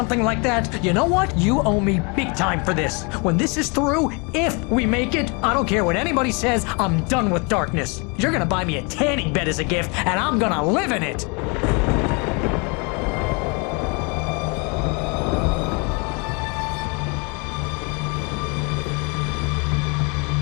like that. You know what? You owe me big time for this. When this is through, if we make it, I don't care what anybody says, I'm done with darkness. You're gonna buy me a tanning bed as a gift, and I'm gonna live in it.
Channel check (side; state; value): right; quieter; 31.6 dB